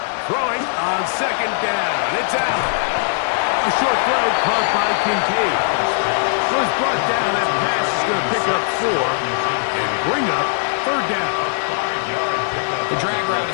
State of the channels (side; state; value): right; silent; digital silence